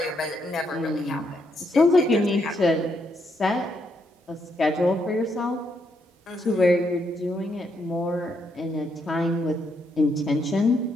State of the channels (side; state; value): both; normal; correlation 0.77